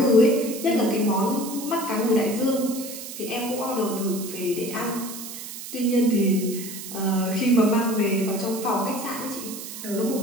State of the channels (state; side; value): noise; right; hiss, 10 dB below the sound